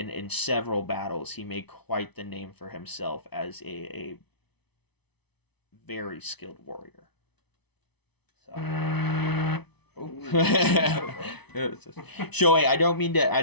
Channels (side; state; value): right; late; 0.99 ms